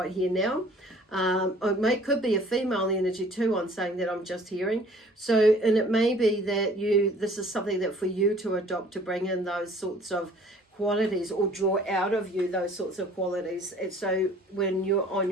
here now, or could be a female energy too, on saying that I'm just hearing. So, and it may be that this is something that for you to adopt, to bring in those sorts of qualities, or draw out of you those sorts of qualities. And so when you're on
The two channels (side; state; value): both; normal; correlation 0.53